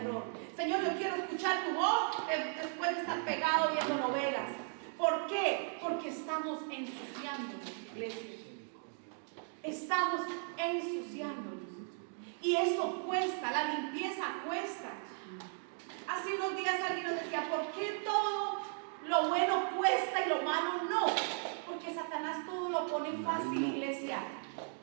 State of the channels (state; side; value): silent; left; 53 dB below the other